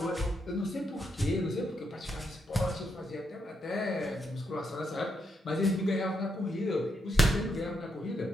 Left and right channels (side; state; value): both; normal; correlation 0.80